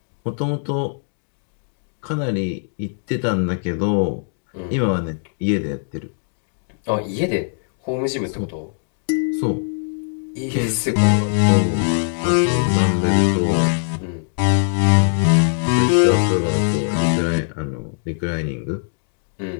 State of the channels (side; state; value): right; silent; digital silence